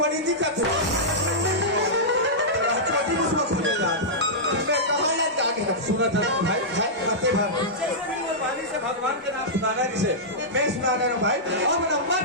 दिखत है छोटी मुझको खुले यार मैं कहाँ लग जाके सुना था भाई करते भाई वाली से भगवान के नाम सुनाना जिसे मैं सुनाना हूँ भाई अब नंबर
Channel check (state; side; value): normal; both; correlation -0.12